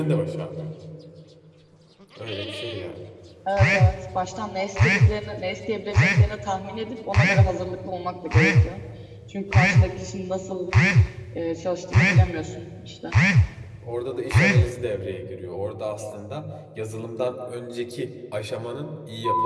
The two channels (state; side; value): identical; both; correlation 1.00